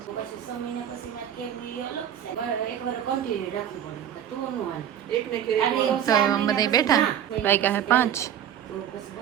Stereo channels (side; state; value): left; quieter; 9.9 dB